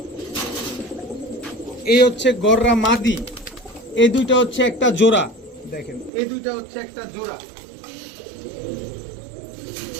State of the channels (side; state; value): left; drops out; at 6.1 s